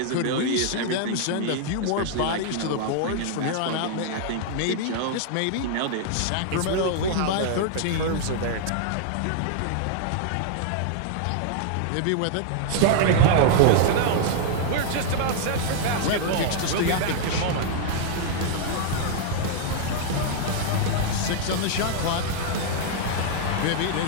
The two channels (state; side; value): different; both; correlation -0.01